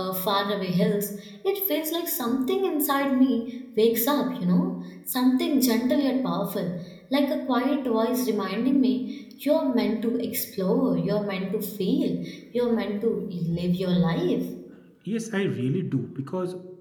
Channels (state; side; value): identical; both; correlation 1.00